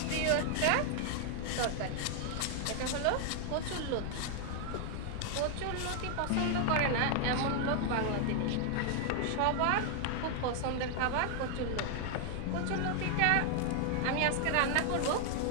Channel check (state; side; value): different; both; correlation 0.00